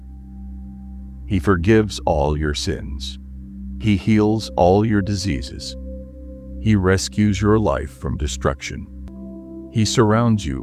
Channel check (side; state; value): both; identical; correlation 1.00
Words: He forgives all your sins. He heals all your diseases. He rescues your life from destruction. He surrounds you